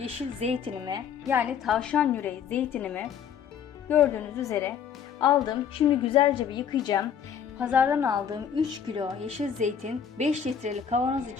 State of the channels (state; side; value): quieter; right; 7.9 dB